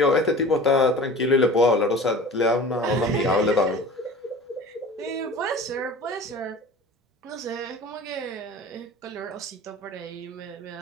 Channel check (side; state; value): both; normal; correlation 0.40